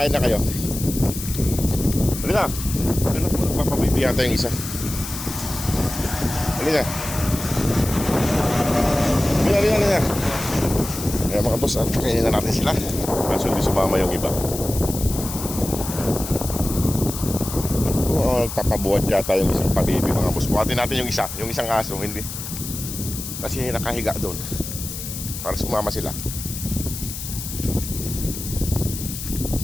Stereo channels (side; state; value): left; noise; hiss, 8 dB below the sound